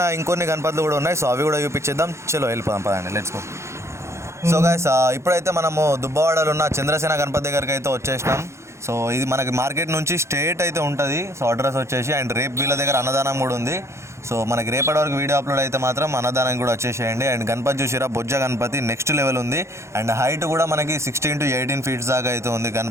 ఇంకొన్ని గణపతులు కూడా ఉన్నాయి. సో అవి కూడా చూపించేద్దాం. చలో వెళ్ళిపోదాం, పదండి, లెట్స్ గో. సో గైస్, ఇప్పుడైతే మనము దుబ్బవాడలో ఉన్న చంద్రసేన గణపతి దగ్గరికి అయితే వచ్చేసినాం. సో ఇది మనకి మార్కెట్ నుంచి స్ట్రేట్ అయితే ఉంటుంది. సో అడ్రస్ వచ్చేసి అండ్ రేపు వీళ్ళ దగ్గర అన్నదానం కూడా ఉంది. సో మనకి రేపటి వరకు వీడియో అప్లోడ్ అయితే మాత్రం అన్నదానం కూడా వచ్చేసేయండి. అండ్ గణపతి చూసిరా, బొజ్జ గణపతి నెక్స్ట్ లెవెల్ ఉంది. అండ్ హైట్ కూడా మనకి 16 to 18 feet దాకా అయితే ఉంది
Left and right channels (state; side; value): late; left; 0.13 ms